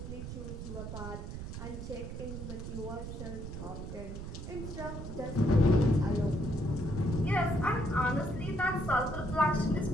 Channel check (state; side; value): noise; right; rumble, 8 dB below the sound